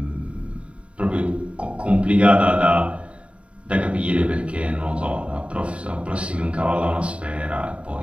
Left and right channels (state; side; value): late; left; 0.061 ms